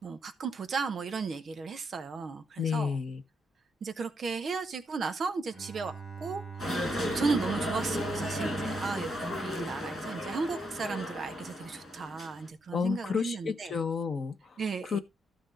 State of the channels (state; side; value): normal; both; correlation 0.78